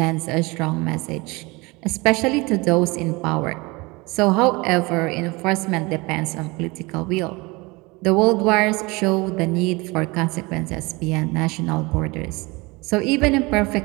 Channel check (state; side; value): quieter; left; 24.7 dB